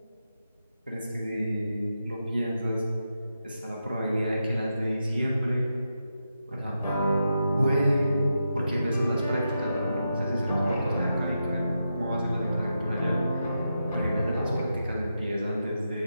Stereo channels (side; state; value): both; inverted; correlation -0.87